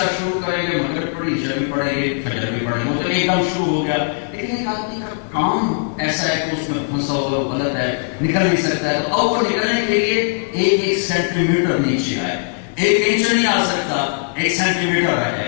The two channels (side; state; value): right; silent; 66 dB below the other